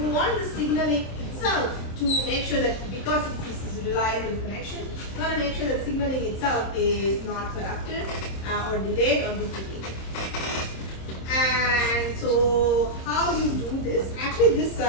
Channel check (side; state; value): right; late; 26 ms